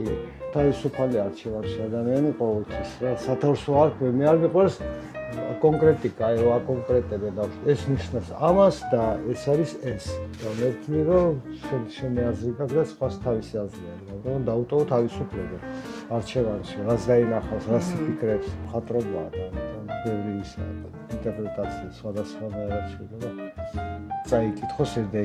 თავისუფალი არჩევანში ადამიანი ყოველთვის რა სათავსო არ ქვე მე არ მიყვარს კონკრეტიკა აი რა კონკრეტები და ეს ნიშნავს ამას და ეს არის ეს და მე ვთვლი რომ შენი აზრი გაქვს და სხვას თავისი აზრი აქვს მაგრამ დაუტოვო თავისუფლება არჩევანში რას დაინახავს რას იფიქრებს მხატვრობაა და ამიტომ ბევრი ისაა ინტერპრეტაცია სხვადასხვანაირად შეიძლება წაიკითხოს ეს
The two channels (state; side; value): identical; both; correlation 1.00